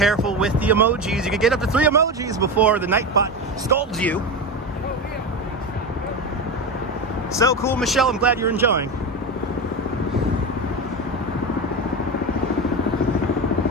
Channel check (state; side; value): normal; both; correlation 0.20